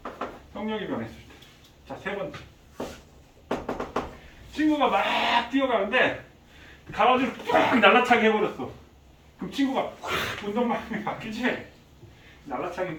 속력이 변했을 때. 자, 세 번째. 친구가 막 뛰어가는데 가로지를 팍 날라차게 해버렸어. 그럼 친구가 확 운동방향이 바뀌지? 날라차기는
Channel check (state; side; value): identical; both; correlation 1.00